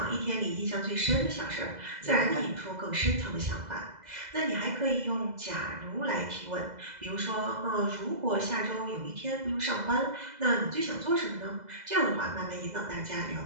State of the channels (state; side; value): late; left; 2.0 ms